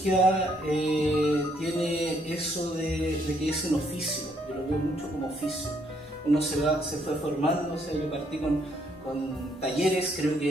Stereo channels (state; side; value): normal; both; correlation 0.70